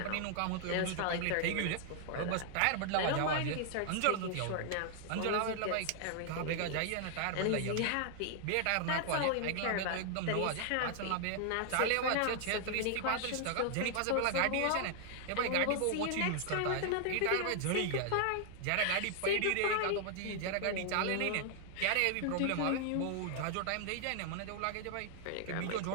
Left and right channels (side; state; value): both; different; correlation 0.00